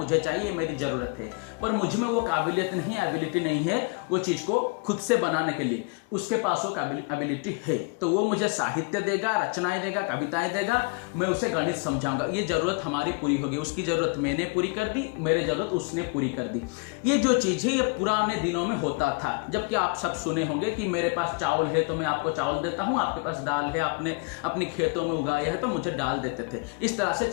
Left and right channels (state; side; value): quieter; right; 30.7 dB